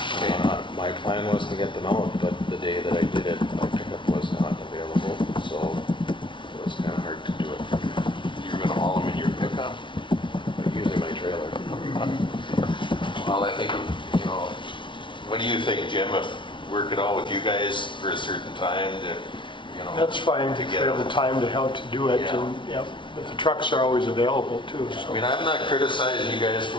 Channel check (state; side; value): late; right; 0.24 ms